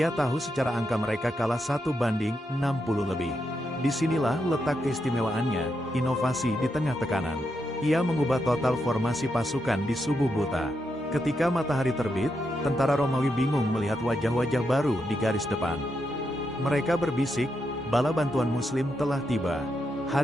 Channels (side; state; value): both; normal; correlation 0.83